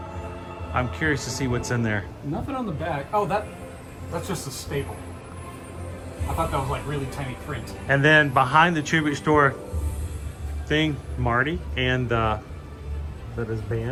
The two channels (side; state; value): both; identical; correlation 1.00